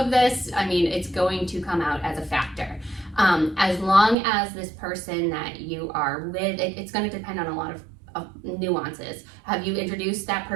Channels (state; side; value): drops out; left; at 4.2 s